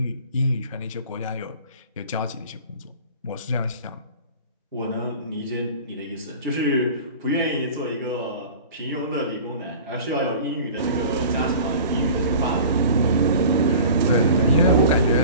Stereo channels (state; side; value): inverted; both; correlation -0.41